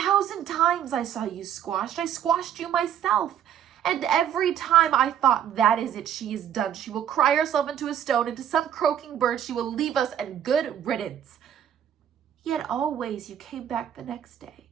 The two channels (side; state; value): left; quieter; 9.7 dB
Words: times I saw you squashed. I squashed you myself. And every time I thought, that is it, she is done. She will cry herself into a stone, into some croaking bird. She will leave us, and good riddance. Yet always you came back the next day.